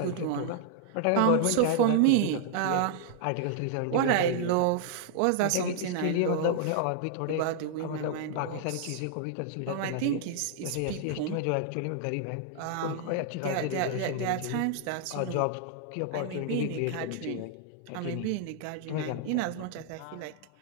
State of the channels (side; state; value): both; different; correlation -0.01